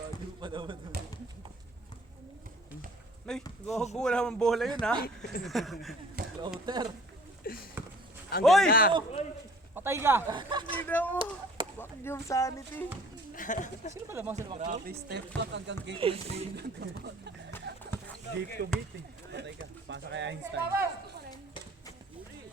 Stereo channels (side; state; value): both; normal; correlation 0.51